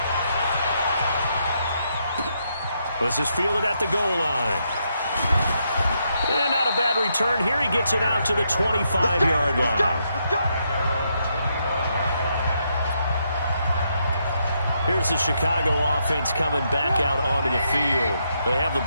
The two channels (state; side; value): inverted; both; correlation -0.78